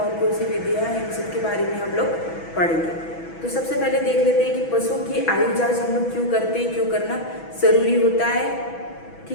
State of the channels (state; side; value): late; right; 6.1 ms